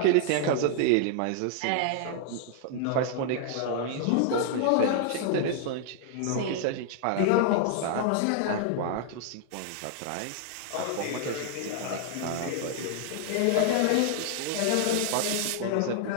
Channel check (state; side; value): different; both; correlation 0.00